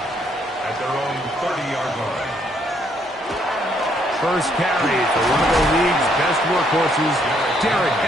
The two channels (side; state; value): both; normal; correlation 0.70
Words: Their own 30-yard line. First carry for one of the league's best workhorses, Derrick